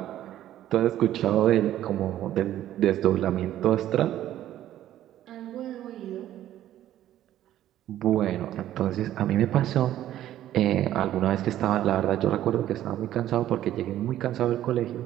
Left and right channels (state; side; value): quieter; left; 12.6 dB